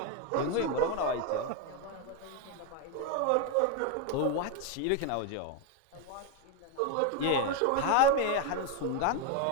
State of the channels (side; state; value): both; different; correlation 0.02